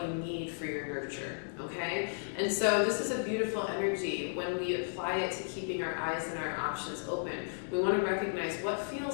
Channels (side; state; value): right; silent; digital silence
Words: you need for your nurture, okay? And so this is a beautiful energy when we apply it to keeping our eyes and our options open. We want to recognize what